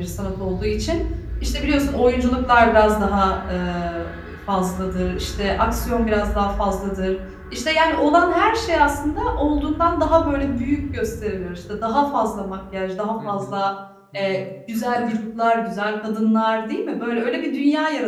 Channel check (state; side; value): identical; both; correlation 1.00